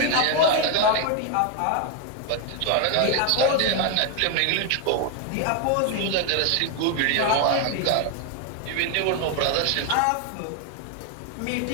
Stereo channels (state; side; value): different; both; correlation 0.01